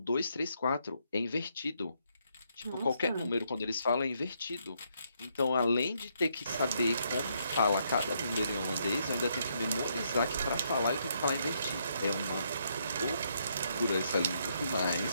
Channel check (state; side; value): inverted; both; correlation -0.75